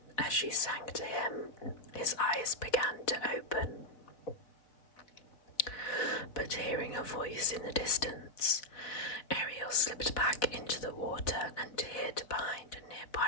as she sank to him, his eyes began to open. But hearing a voice in the distance, Ariel slipped back into the water and hid behind a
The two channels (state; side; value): late; right; 4.1 ms